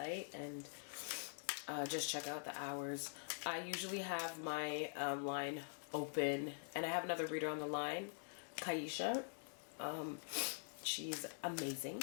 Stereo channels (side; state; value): right; silent; digital silence